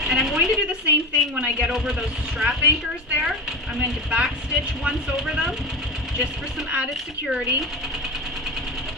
And I'm going to do the same thing when I get over those strap anchors there. I'm going to back stitch once over them just for some added security.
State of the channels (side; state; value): both; normal; correlation 0.23